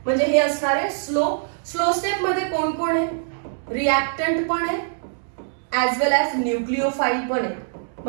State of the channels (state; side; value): silent; left; 63 dB below the other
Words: म्हणजे हे असणार आहे स्लो स्टेप मध्ये कोण कोण आहे? रिएक्टंट पण आहे ऍज वेल ऍज न्यूक्लिओफाईल पण आहे,